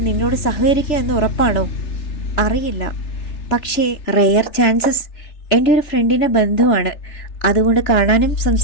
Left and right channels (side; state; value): right; late; 3.3 ms